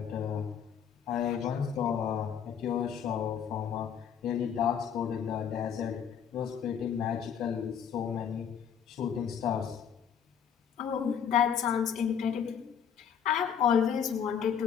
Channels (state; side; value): quieter; right; 8.0 dB